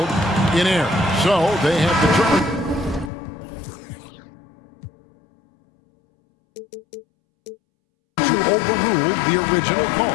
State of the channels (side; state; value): right; drops out; at 3.1 s